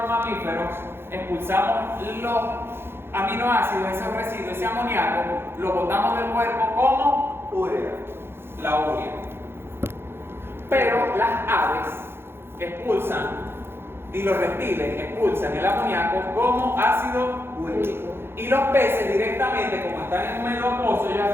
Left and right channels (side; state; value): left; late; 0.11 ms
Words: mamíferos expulsamos los aminoácidos, esos residuos, ese amoníaco, lo botamos del cuerpo como Urea. la urea. Pero las aves expulsan y los reptiles expulsan el amoníaco como ácido úrico. Y los peces directamente, como están en un medio acuoso, ellos